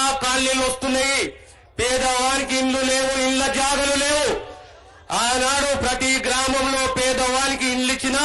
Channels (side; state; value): both; identical; correlation 1.00